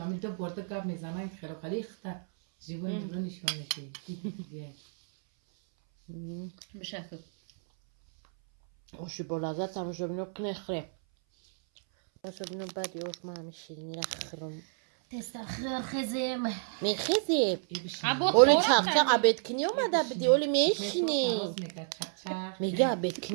برده کب میزنن خیلی خیلی خطر جیبون جیبون نشون میشه بشکل اوشی با لذت تماشا بینو کنه خره تماشا بینو بعدی اوش من همه شیرینی را خرم تستخر خزم میخیزی ابو اولی خورا چاق چاق عبید کنی اومده بدی اولی میشینی میگه میگه عبید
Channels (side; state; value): left; silent; 57 dB below the other